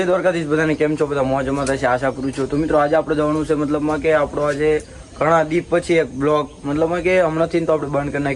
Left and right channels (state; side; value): identical; both; correlation 1.00